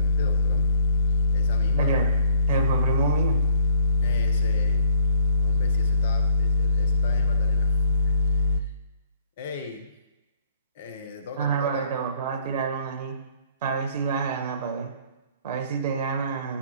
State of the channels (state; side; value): inverted; both; correlation -0.61